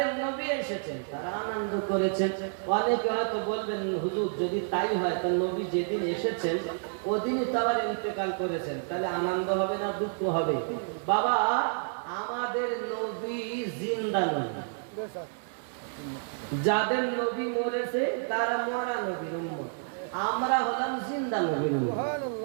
নবী এসেছেন তারা আনন্দ করেছেন। অনেকে হয়তো বলবেন হুজুর যদি তাই হয় তো নবী যেদিন এসেছেন ওদিনই তো আবার ইন্তেকাল করেছেন, তাহলে আনন্দ হবে না দুঃখ হবে? বাবা, আমাদের নবী জিন্দা নয়, যাদের নবী মরেছে তারা মরা নবীর উম্মত, আমরা হলাম জিন্দা নবীর উম্মত।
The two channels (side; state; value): left; silent; 58 dB below the other